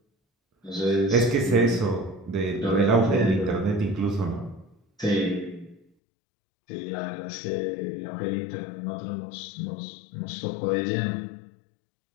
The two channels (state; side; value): drops out; right; at 5.8 s